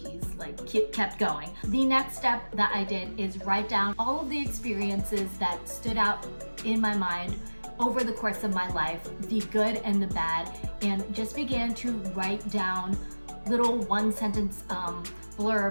kept going. The next step that I did is write down all of the experiences that stood out in my mind over the course of my life, the good and the bad, and just began to write down little one-sentence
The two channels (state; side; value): inverted; both; correlation -1.00